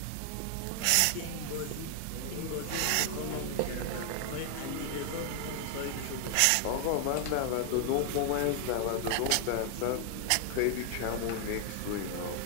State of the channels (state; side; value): different; both; correlation 0.00